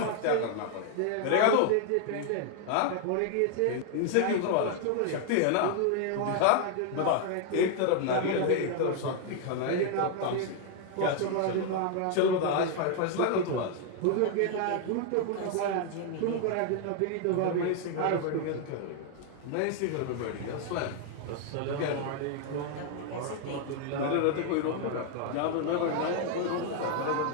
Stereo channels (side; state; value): both; different; correlation 0.00